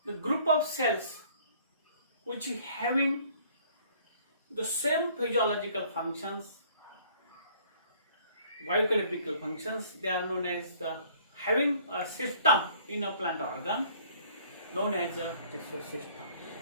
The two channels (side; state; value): both; inverted; correlation -0.57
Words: The group of cells which having the same physiological functions, biochemical functions, they are known as the having a system in a plant organ known as a tissue system.